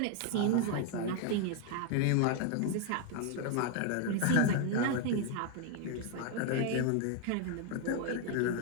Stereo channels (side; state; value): both; different; correlation 0.01